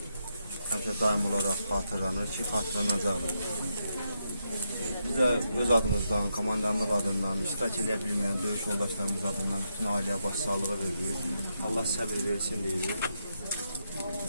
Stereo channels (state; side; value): inverted; both; correlation -0.82